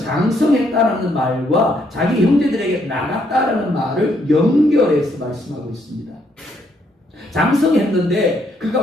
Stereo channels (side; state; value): both; normal; correlation 0.72